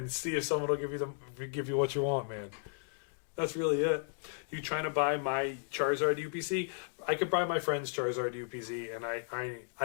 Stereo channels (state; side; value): silent; right; digital silence